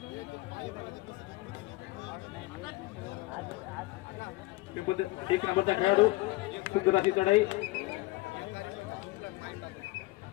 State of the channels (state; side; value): quieter; right; 20.4 dB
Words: पिंपळदरी 1 नंबरचा खेळाडू सुंदर अशी चढाई